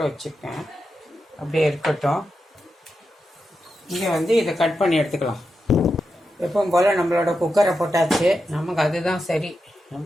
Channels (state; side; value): normal; both; correlation 0.88